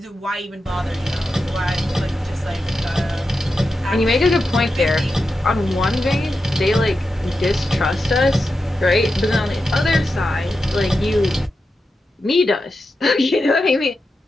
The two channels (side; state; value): both; normal; correlation 0.90